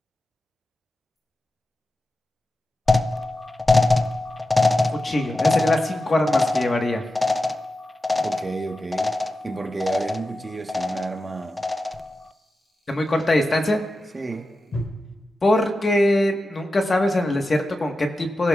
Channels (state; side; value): normal; both; correlation 0.92